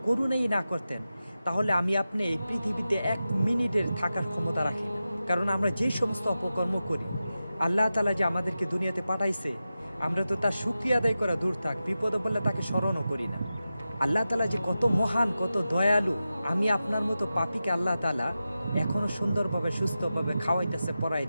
করুণাই না করতেন, তাহলে আমি আপনি এই পৃথিবীতে 1 মিনিটের থাকার ক্ষমতা রাখি না। কারণ আমরা যে সমস্ত অপকর্ম করি, আল্লাহ তাআলা যে আমাদেরকে দুনিয়াতে পাঠাইছে, আমরা তো তার শুকরিয়া আদায় করা দূর থাক, বিপদে পড়লে তাকে স্মরণও করি না। আল্লাহ তাআলা যে কত মহান, কত দয়ালু। আমি আপনার মতো পাপীকে আল্লাহ তাআলা এখনো সুন্দরভাবে সুস্থভাবে খাওয়াইতেছে,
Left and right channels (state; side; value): inverted; both; correlation -0.92